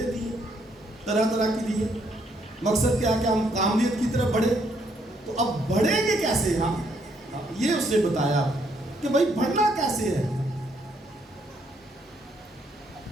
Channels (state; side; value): normal; both; correlation 0.71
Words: دی ہیں, طرح طرح کی دی ہیں. مقصد کیا کہ ہم کامیت کی طرف بڑھے. تو اب بڑھیں گے کیسے. یہ اس نے بتایا کہ بھائی بڑھنا کیسے ہے.